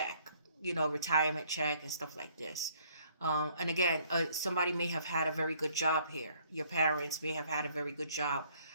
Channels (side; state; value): both; inverted; correlation -0.62